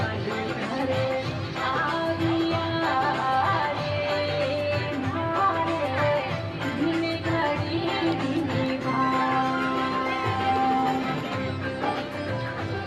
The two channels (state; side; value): identical; both; correlation 1.00